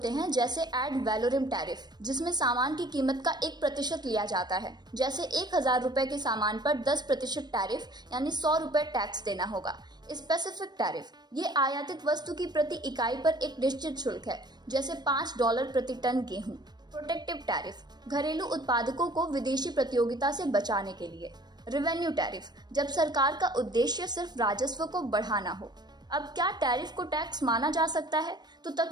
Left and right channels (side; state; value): left; late; 0.20 ms